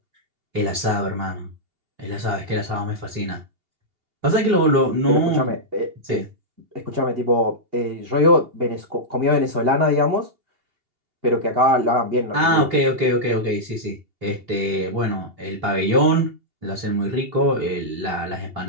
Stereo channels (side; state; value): left; late; 2.8 ms